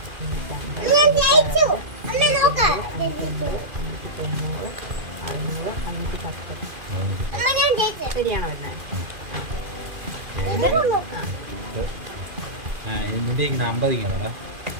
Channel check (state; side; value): late; left; 2.4 ms